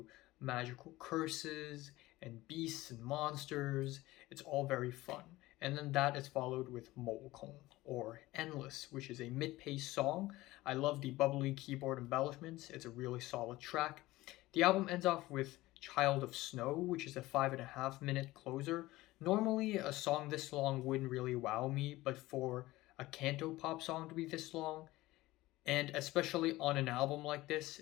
magical curses and beasts and monsters. It's all very fun. And then that is followed with Mo Kong, or Endless, which is a mid-paced song. I love the bubbly keyboard embellishments. It's a really solid track. The album ends off with Child of Snow, which is a 5.5-minute closer. Normally, a song this long wouldn't really wow me, but for a cantopop song to be this long, and especially on an album like this,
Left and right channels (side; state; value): right; quieter; 18.3 dB